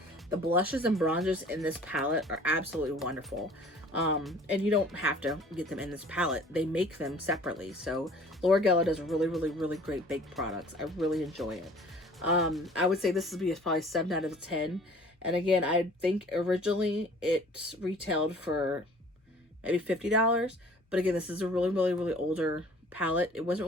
The blushes and bronzers in this palette are absolutely wonderful. And you don't have to get them in this palette. They make them separately. So Laura Geller does really, really, really great baked products. I really enjoy it. I would say this would be probably 7 out of 10. And again, I think originally it retailed for maybe $50. But again, this is a really, really, really older palette. It wasn't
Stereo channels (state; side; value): normal; both; correlation 0.50